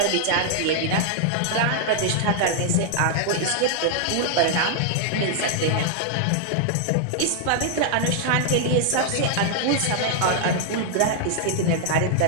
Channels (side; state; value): both; different; correlation 0.00